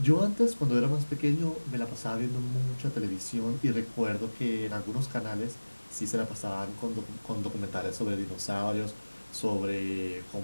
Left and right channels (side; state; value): both; inverted; correlation -1.00